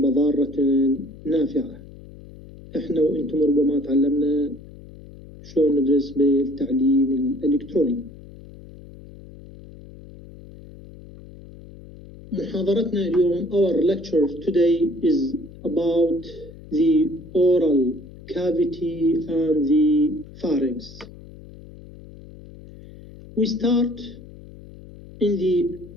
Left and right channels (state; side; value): noise; left; hum, 18 dB below the sound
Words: ضارة نافعة. احنا وانتم ربما تعلمنا شلون ندرس بالتعليم الإلكتروني. محاضرتنا اليوم, our lecture today is about the oral cavity and the pharynx. We start in the